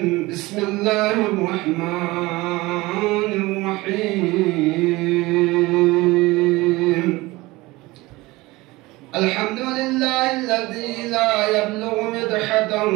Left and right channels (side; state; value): left; quieter; 20.9 dB